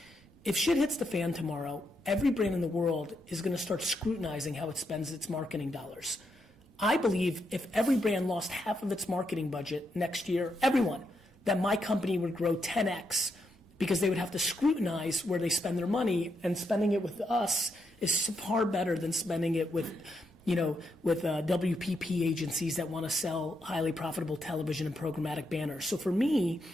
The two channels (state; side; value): normal; both; correlation 0.81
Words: If shit hits the fan tomorrow, every brand in the world is going to start scrutinizing how it spends its marketing dollars. I believe if every brand lost half of its marketing budget next year, everyone, that my company would grow 10x because they would have to scrutinize where they spend their money, and spending it with us is far better than spending it with WPP agencies that want to sell highly profitable television and programmatic banners. So for me,